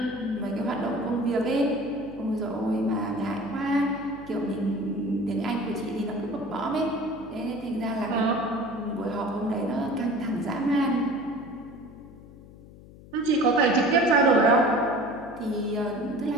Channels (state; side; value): noise; left; hum, 20 dB below the sound